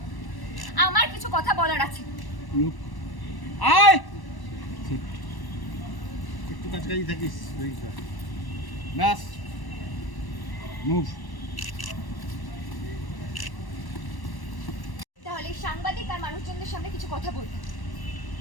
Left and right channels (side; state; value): right; late; 1.1 ms